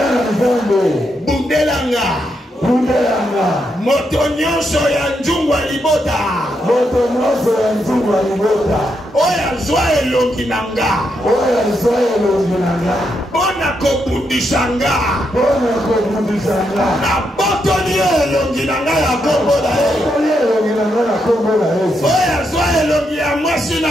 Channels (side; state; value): both; normal; correlation 0.81